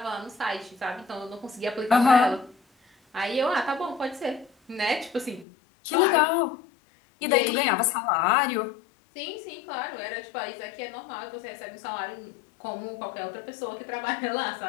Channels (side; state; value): right; drops out; at 5.5 s